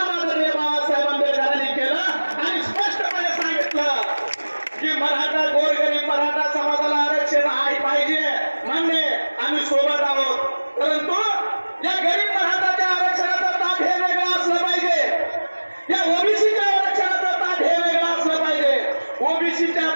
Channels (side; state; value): both; inverted; correlation -1.00